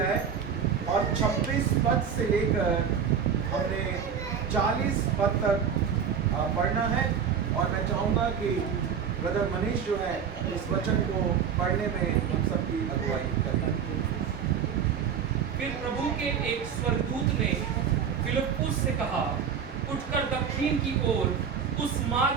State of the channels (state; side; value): quieter; left; 7.3 dB